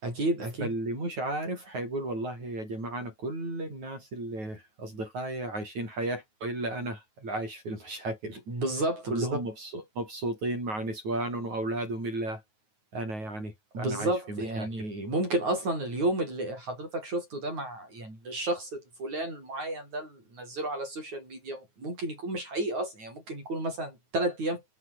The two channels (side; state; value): left; late; 9.3 ms